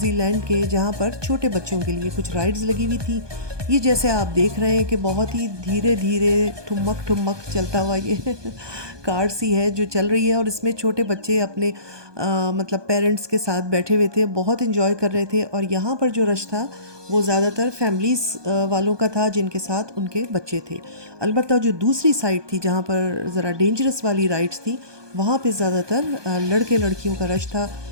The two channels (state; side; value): late; left; 1.2 ms